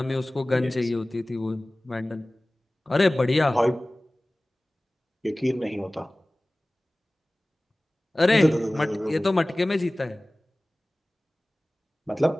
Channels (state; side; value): normal; both; correlation 0.98